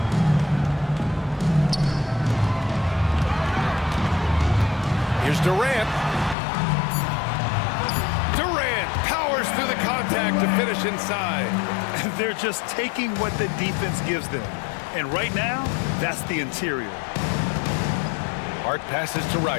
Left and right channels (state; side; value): drops out; right; at 6.4 s